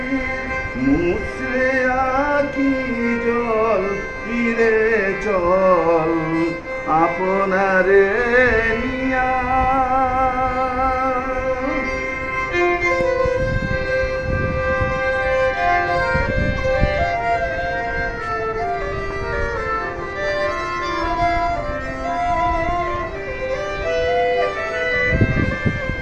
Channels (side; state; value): both; identical; correlation 1.00